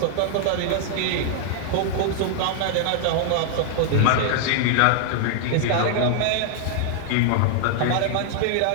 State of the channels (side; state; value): both; different; correlation -0.01